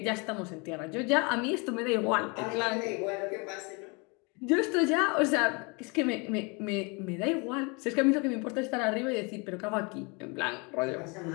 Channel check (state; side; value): quieter; right; 30.4 dB